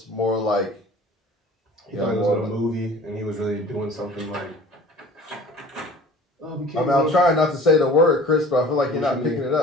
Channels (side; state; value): both; normal; correlation 0.45